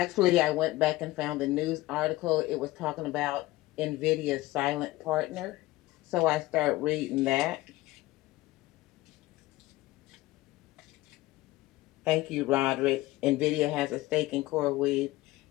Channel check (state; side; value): quieter; right; 18.2 dB